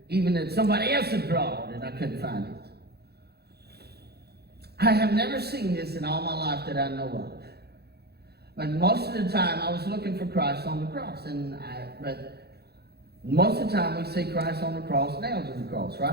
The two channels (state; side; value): late; left; 0.47 ms